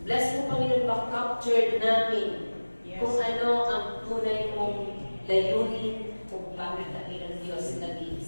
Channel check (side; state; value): both; inverted; correlation -1.00